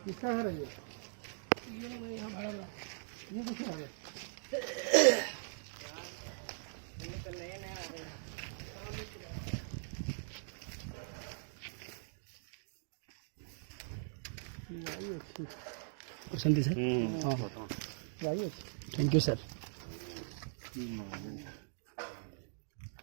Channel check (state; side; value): silent; left; digital silence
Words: क्या है ये यहाँ भाड़ा ये कुछ आ गया पसंत है सर हाँ थैंक यू सर